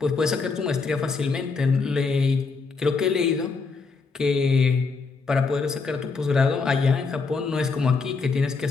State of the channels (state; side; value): quieter; right; 4.5 dB